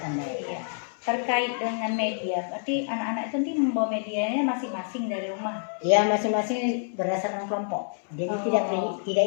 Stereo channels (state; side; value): silent; right; digital silence